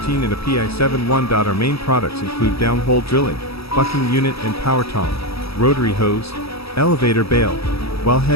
and a PI 71. Our main products include downhole drilling, bucking unit and power tong, rotary hose, elevator bale,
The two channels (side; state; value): right; late; 0.77 ms